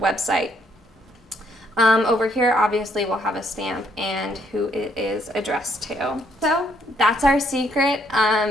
website. Over here, obviously, we'll have a stamp and who it is addressed to. So that's our secret.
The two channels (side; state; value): both; normal; correlation 0.69